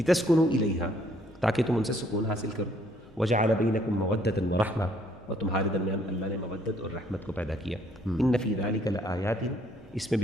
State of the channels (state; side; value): normal; both; correlation 0.65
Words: الیہا، تاکہ تم ان سے سکون حاصل کرو، وجعل بینکم مودۃ ورحمہ، اور تمہارے درمیان اللہ نے مودت اور رحمت کو پیدا کیا۔ ان فی ذلک لآیات، اس میں